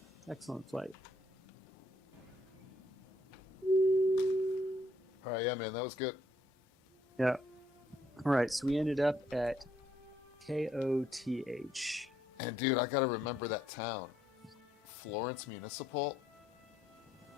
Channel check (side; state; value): both; normal; correlation 0.69